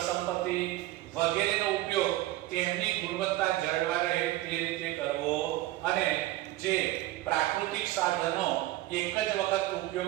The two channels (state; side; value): quieter; left; 16.7 dB